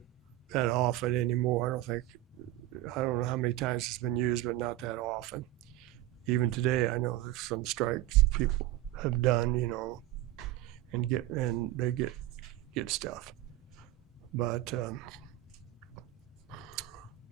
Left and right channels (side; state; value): left; quieter; 15.2 dB